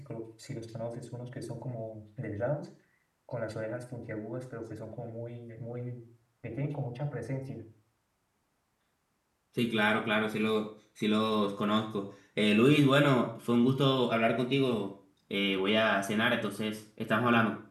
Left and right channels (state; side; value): identical; both; correlation 1.00